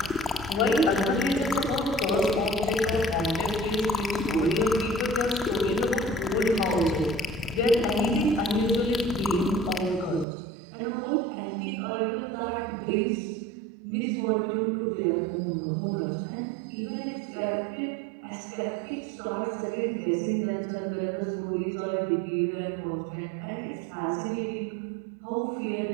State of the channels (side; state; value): left; drops out; at 10.2 s